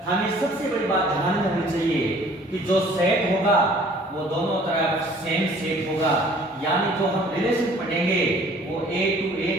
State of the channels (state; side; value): normal; both; correlation 0.54